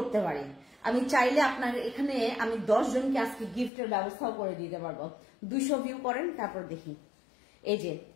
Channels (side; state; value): right; drops out; at 3.7 s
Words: পারি, আমি চাইলে আপনার এখানে আমি 10 জনকে আজকে গিফটের ব্যবস্থাও করে দিতে পারবো। 200 ভিউ করেন, তারপর দেখি। এই যে